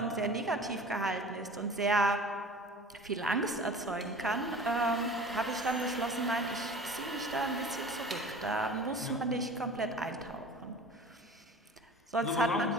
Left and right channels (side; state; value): both; normal; correlation 0.40